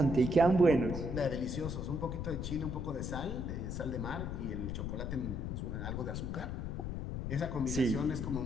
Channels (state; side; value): noise; left; rumble, 3 dB below the sound